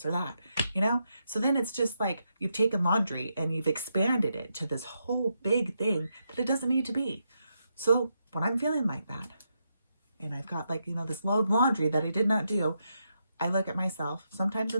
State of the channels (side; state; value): both; inverted; correlation -0.83